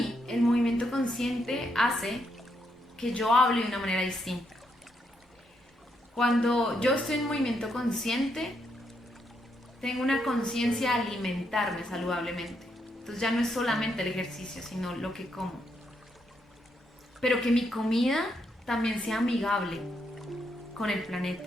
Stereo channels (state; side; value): normal; both; correlation 0.78